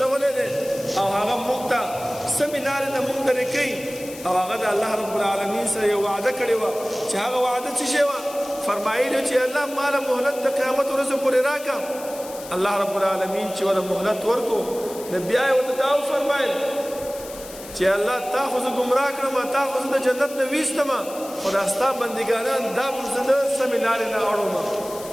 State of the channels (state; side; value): noise; left; hiss, 15 dB below the sound